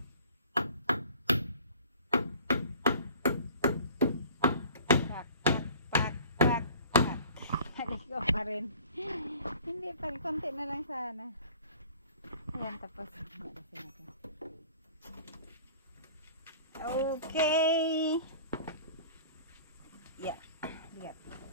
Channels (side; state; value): both; inverted; correlation -0.48